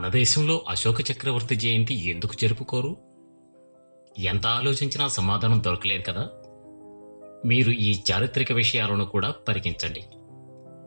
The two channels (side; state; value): both; inverted; correlation -1.00